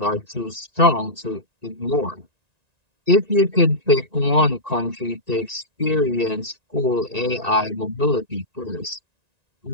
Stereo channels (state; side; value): late; left; 1.9 ms